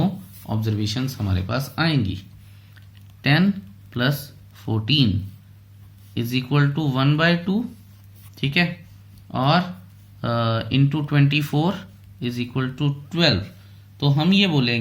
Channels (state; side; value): identical; both; correlation 1.00